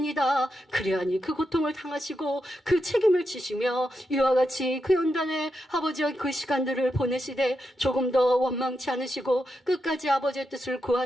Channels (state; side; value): normal; both; correlation 0.86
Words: 그래야 없나니 그 고통을 당하시고 그 책임을 지시며 이와 같이 그 연단에 아버지와 그 시간들을 보내시되 조금 더 원망치 않으시고 끝까지 아버지의 뜻을